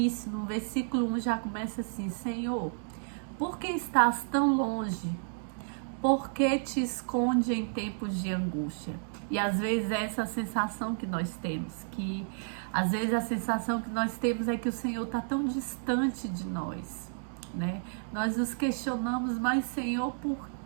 no versículo 1, já começa assim: Senhor, por que estás tão longe? Por que te esconde em tempos de angústia? E às vezes é essa sensação que nós temos, que às vezes a sensação que nós temos é que o Senhor está tão distante de nós, né? Nós nos questionamos: mas Senhor, por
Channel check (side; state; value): left; silent; digital silence